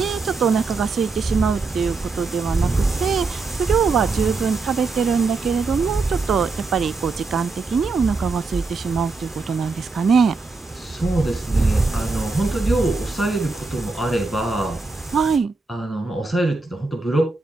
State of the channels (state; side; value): quieter; left; 4.0 dB